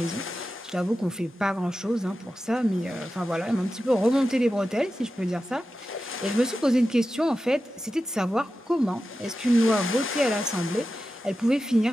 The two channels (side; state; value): both; normal; correlation 0.92